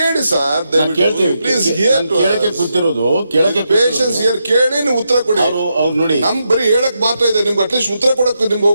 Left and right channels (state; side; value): inverted; both; correlation -0.83